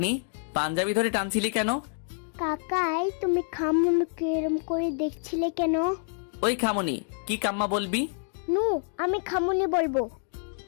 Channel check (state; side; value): silent; right; 60 dB below the other